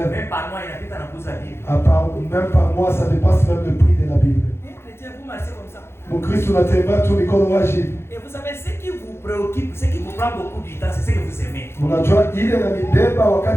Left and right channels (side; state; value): right; late; 0.12 ms